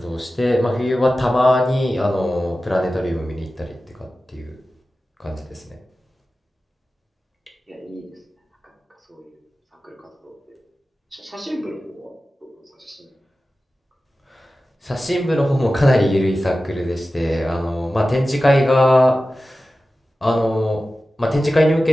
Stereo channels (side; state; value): both; normal; correlation 0.95